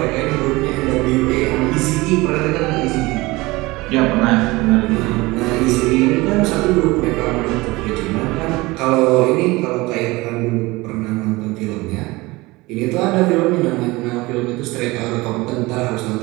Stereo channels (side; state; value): left; quieter; 21.7 dB